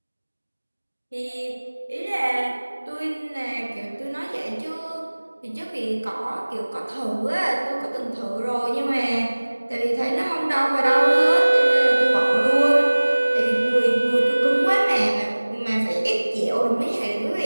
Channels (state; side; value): inverted; both; correlation -1.00